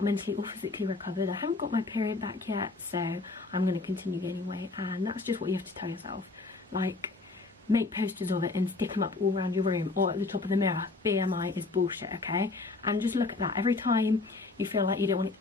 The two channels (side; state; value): right; quieter; 3.6 dB